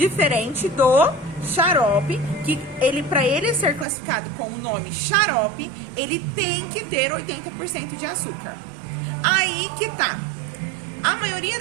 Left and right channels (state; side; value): drops out; left; at 3.9 s